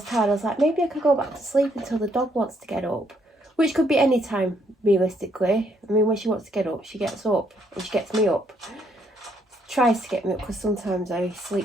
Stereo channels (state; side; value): normal; both; correlation 0.71